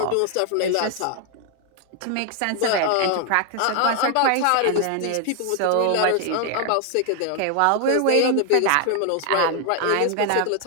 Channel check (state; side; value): different; both; correlation 0.00